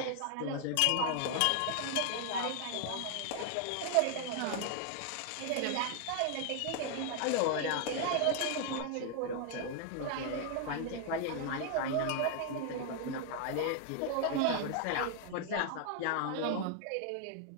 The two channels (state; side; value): different; both; correlation 0.00